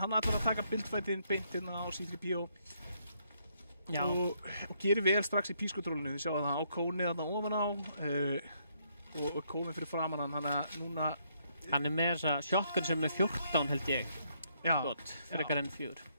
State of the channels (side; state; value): both; inverted; correlation -0.72